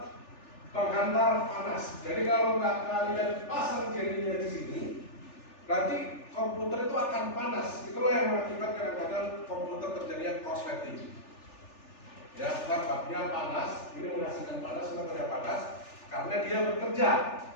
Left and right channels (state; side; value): late; right; 3.4 ms